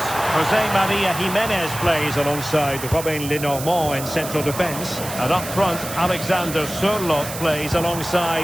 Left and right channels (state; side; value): noise; right; hiss, 9 dB below the sound